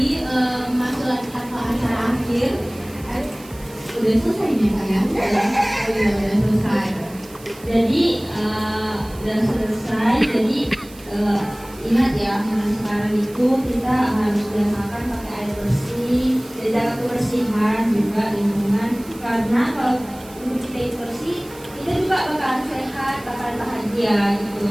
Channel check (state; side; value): noise; right; hiss, 21 dB below the sound